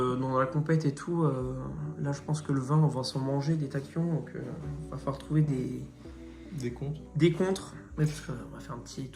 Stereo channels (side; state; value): both; identical; correlation 1.00